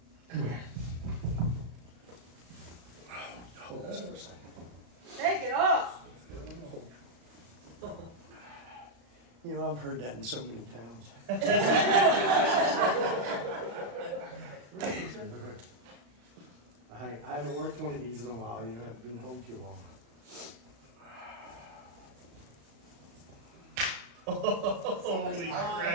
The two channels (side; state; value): left; late; 35 ms